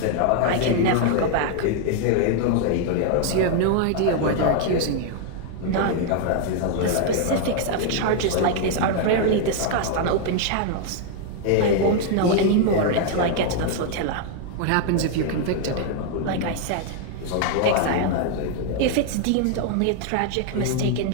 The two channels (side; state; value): both; different; correlation 0.00